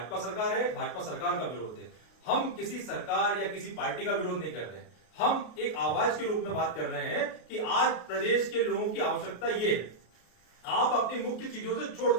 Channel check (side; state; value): right; late; 33 ms